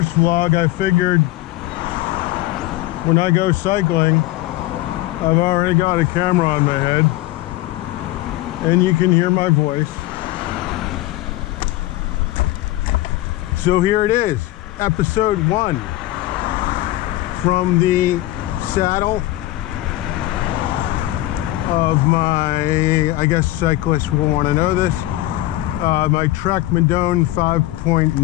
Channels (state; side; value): quieter; right; 16.5 dB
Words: vlog, I figured when I go cycling, I've already got a camera on my head and you can hear my voice. So here it is, episode 1 from the saddle of my, I guess cyclists will want to know this, my Trek Madone